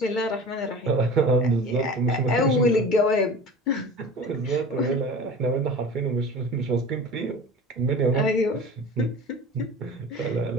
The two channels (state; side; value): normal; both; correlation 0.37